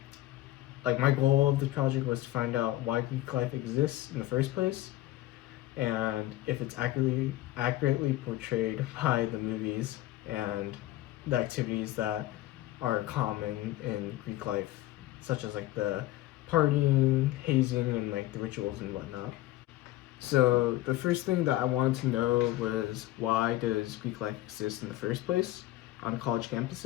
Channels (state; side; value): quieter; right; 15.8 dB